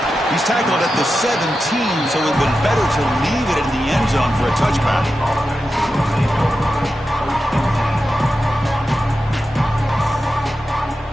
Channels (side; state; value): both; normal; correlation 0.91